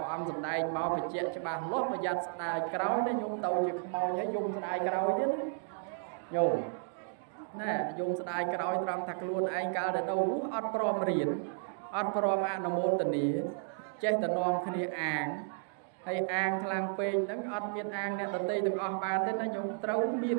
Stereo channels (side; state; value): left; silent; digital silence